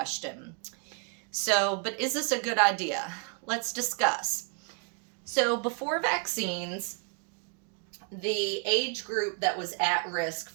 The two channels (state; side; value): quieter; left; 37.5 dB